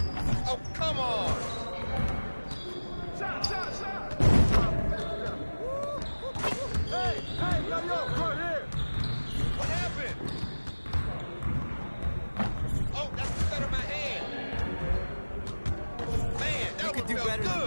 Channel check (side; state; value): both; inverted; correlation -1.00